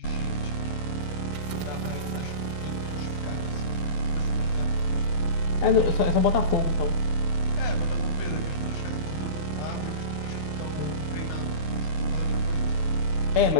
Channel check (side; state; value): right; late; 11 ms